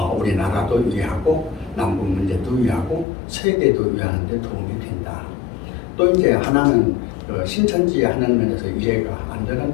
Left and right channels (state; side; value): drops out; right; at 3.1 s